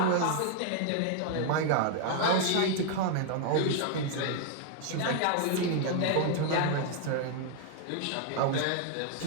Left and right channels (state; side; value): different; both; correlation 0.00